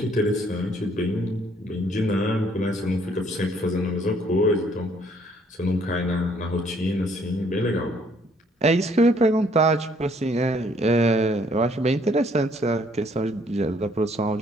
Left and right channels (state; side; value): normal; both; correlation 0.64